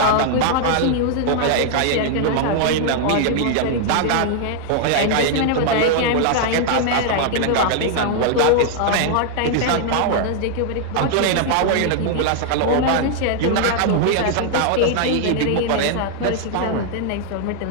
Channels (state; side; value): different; both; correlation 0.00